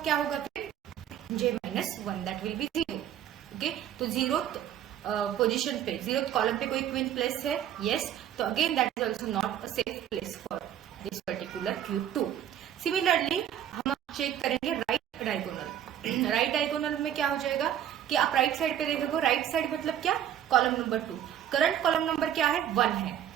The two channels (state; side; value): quieter; left; 10.4 dB